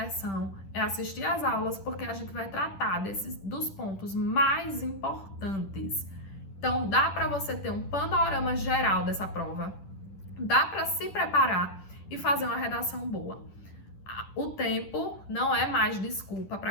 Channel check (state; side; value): late; right; 10 ms